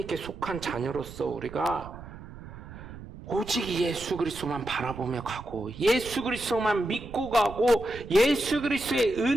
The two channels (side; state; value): right; noise; rumble, 14 dB below the sound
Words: 속한 자녀로서 우리가 오직 예수 그리스도만 바라보며 가고 예수 그리스도만 믿고 가고 예수 그리스도의